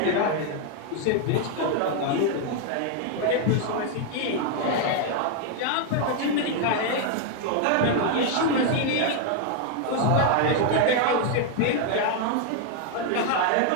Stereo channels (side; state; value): both; different; correlation 0.00